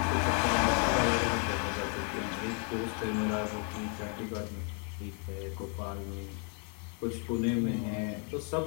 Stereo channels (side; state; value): right; quieter; 39.6 dB